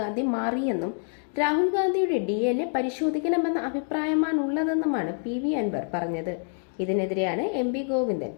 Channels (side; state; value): right; silent; 60 dB below the other